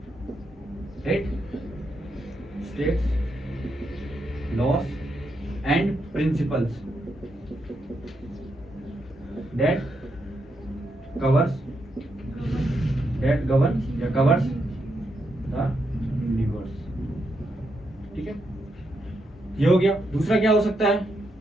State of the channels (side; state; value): both; normal; correlation 0.82